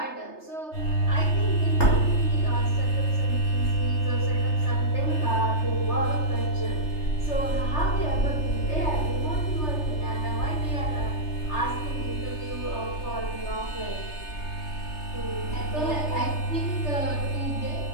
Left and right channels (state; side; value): late; right; 3.3 ms